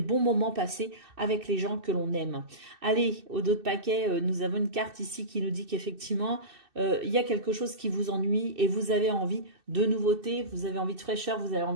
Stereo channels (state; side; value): late; left; 2.6 ms